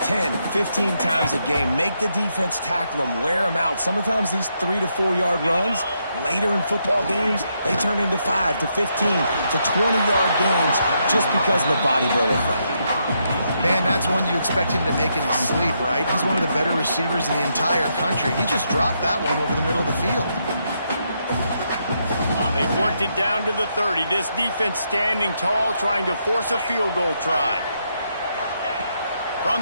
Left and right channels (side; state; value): both; inverted; correlation -0.79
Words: 10, 15 times a game. Make the defense tackle them, wear them out. Sometimes these 3 to 4 yard runs, later in football games, they turn into 5 to 15 to 20-yard gains just because of the body blow effect. Man, that's one you expect him to make in his sleep, right? He's one of the better receivers in the entire country. He just dropped that one over the middle of the field. They've worked it down to the 30. This defense standing tall, trying to force a field goal try. From